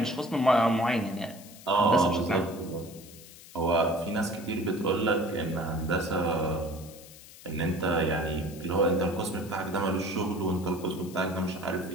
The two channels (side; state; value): left; noise; hiss, 19 dB below the sound